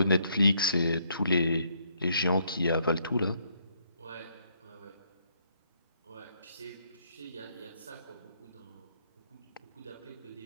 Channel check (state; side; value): inverted; both; correlation -0.71